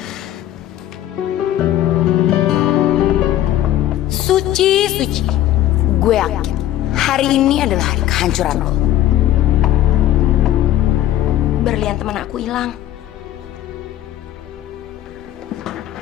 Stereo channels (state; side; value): quieter; right; 13.0 dB